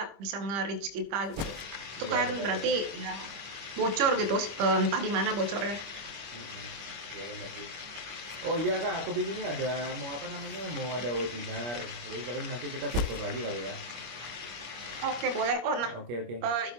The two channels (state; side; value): late; left; 25 ms